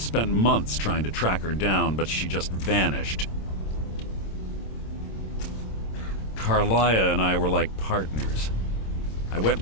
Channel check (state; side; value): late; right; 26 ms